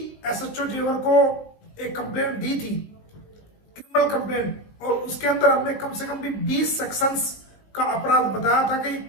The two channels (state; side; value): late; right; 19 ms